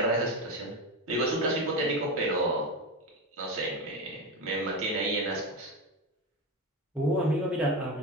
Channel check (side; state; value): both; normal; correlation 0.18